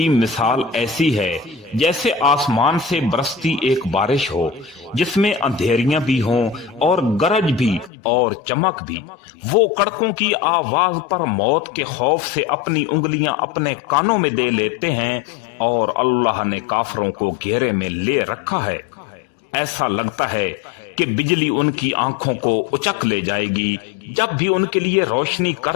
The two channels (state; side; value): drops out; right; at 7.9 s